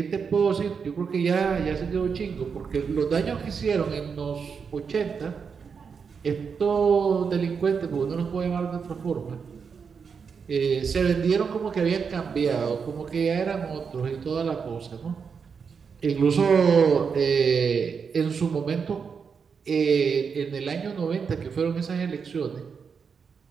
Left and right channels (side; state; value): left; quieter; 6.0 dB